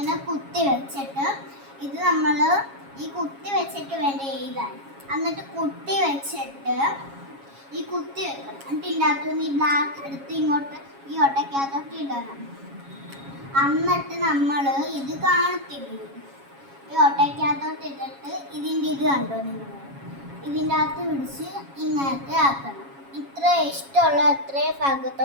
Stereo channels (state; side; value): late; left; 7.3 ms